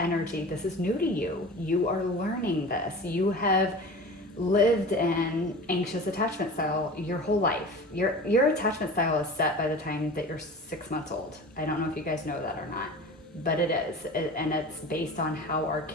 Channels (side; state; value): both; normal; correlation 0.36